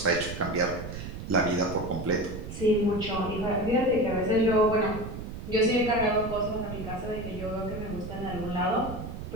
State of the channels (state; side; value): noise; right; rumble, 9 dB below the sound